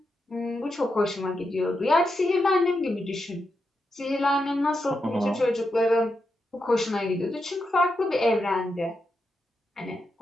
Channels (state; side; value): normal; both; correlation 0.85